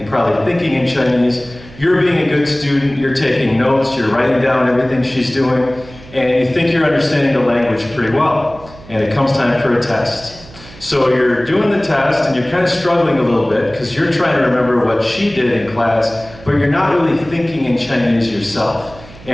probably thinking in Chinese. You're being a good student. You're taking notes. You're writing down everything she's doing. And you think you're understanding the language pretty well. And it comes time for a test. So you're doing the test and you're kind of struggling a little bit because you're trying to remember what she did in class, but you're not really thinking in Chinese yourself.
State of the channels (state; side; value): noise; right; hum, 20 dB below the sound